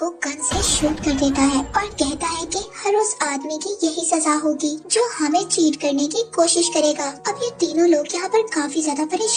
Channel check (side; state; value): both; identical; correlation 1.00